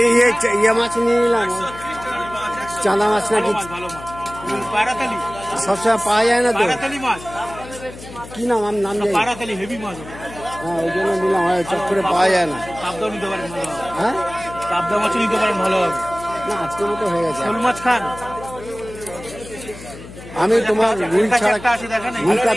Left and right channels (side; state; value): left; noise; hum, 15 dB below the sound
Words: ইয়ে মাছ নিয়ে নিলাম, চাঁদা মাছ নাকি সবসময় পাওয়া যায় না তো। কি নাম? আমার নাম হেভি মাছ। হ্যাঁ, ওই জন্য নিলাম, চট করে পাওয়া যায় না। হ্যাঁ, পাবদা মাছ নিতে পারেন, ভালো হবে। না, আজকের মতো হয়ে গেছে। শোল মাছ খান? আমি তোমার রুই